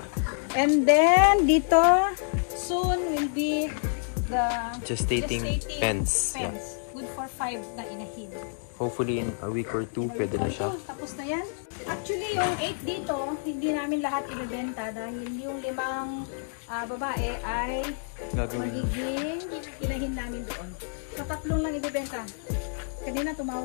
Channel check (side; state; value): right; silent; digital silence